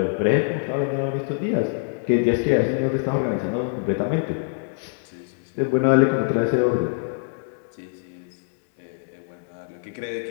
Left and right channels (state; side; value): silent; right; digital silence